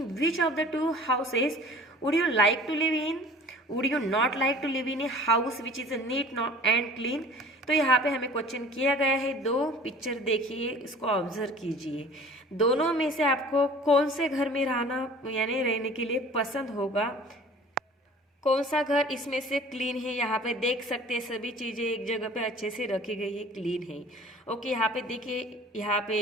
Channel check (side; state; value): both; normal; correlation 0.46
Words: which of the two houses would you like to live in? Would you not like to live in a house which is neat and clean? तो यहाँ पे हमें question किया गया है, दो picture देखिए, इसको ऑब्जर्व कीजिए। दोनों में से आपको कौन से घर में रहना यानी रहने के लिए पसंद होगा, कौन सा घर इसमें से क्लीन है। यहाँ पे देख सकते हैं सभी चीजें एक जगह पे अच्छे से रखी गई है, क्लीन है। ओके, यहाँ पे देखिए, यहाँ